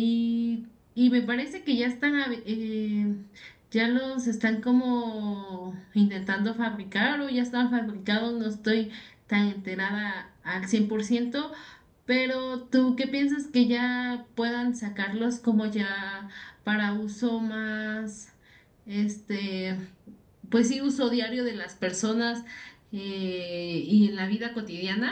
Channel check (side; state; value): both; identical; correlation 1.00